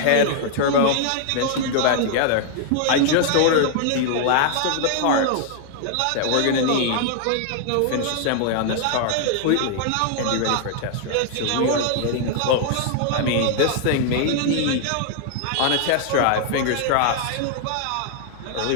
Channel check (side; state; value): both; different; correlation 0.00